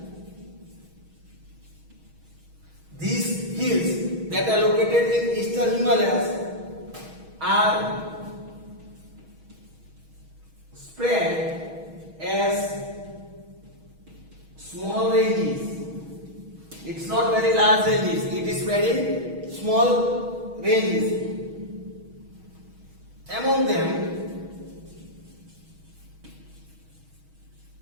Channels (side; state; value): left; late; 6.3 ms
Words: these hills that are located in Eastern Himalayas are spread as small ranges. It's not very large ranges, it is spread in small ranges. Among them,